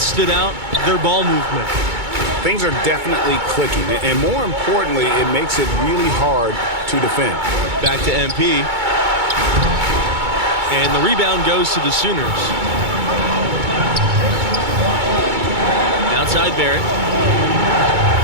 stood out, their ball movement. things are definitely clicking. And more importantly, it makes it really hard to defend. Back to MP. And the rebound goes to the Sooners. Outside Barrett.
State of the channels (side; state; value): left; late; 2.2 ms